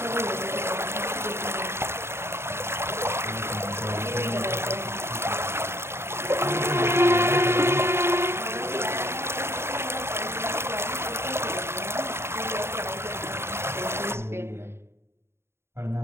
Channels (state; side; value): late; left; 0.12 ms